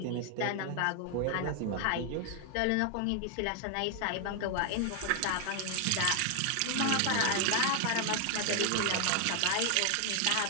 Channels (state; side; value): different; both; correlation 0.00